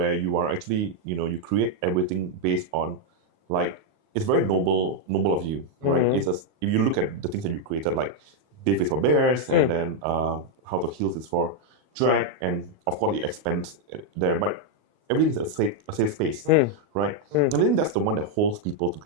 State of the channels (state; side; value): late; left; 38 ms